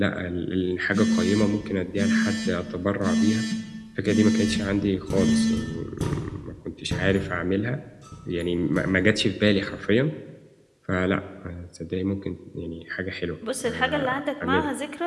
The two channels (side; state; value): both; identical; correlation 1.00